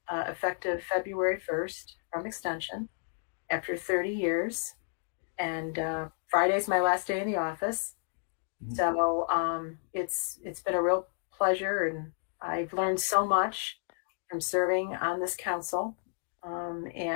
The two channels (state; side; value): silent; right; digital silence